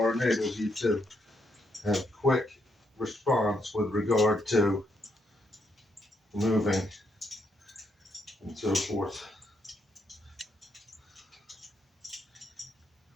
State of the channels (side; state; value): both; normal; correlation 0.77